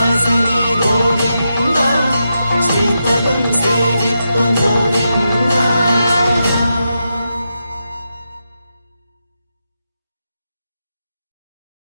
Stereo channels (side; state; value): both; inverted; correlation -0.87